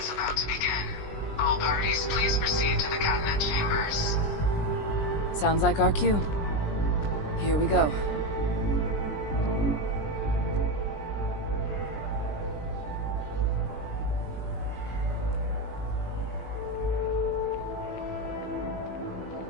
about to begin. All parties, please proceed to the cabinet chambers. Sounds like our cue. Here we go.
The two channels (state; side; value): late; right; 20 ms